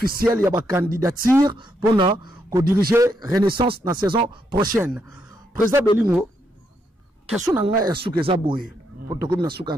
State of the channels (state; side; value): normal; both; correlation 0.78